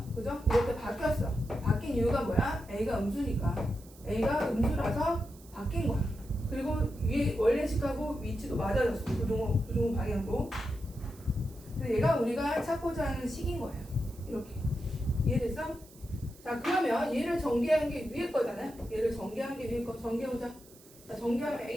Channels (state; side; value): noise; right; hiss, 23 dB below the sound